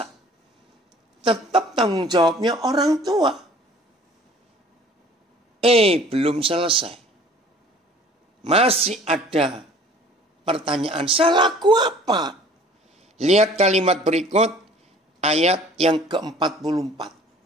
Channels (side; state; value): both; normal; correlation 0.50